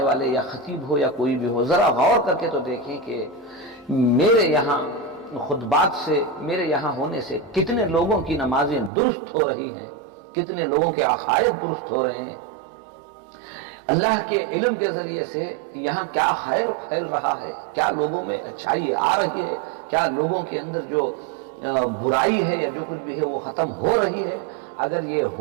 والے یا خطیب ہو یا کوئی بھی ہو، ذرا غور کر کے تو دیکھیں کہ میرے یہاں خطبات سے، میرے یہاں ہونے سے کتنے لوگوں کی نمازیں درست ہو رہی ہیں، کتنے لوگوں کے عقائد درست ہو رہے ہیں، اللہ کے علم کے ذریعے سے یہاں کیا خیر پھیل رہا ہے، کیا لوگوں میں اچھائی آ رہی ہے، کیا لوگوں کے اندر جو برائی ہے یا جو کچھ بھی ہے وہ ختم ہو رہی ہے۔ اگر یہ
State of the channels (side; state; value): left; drops out; at 8.9 s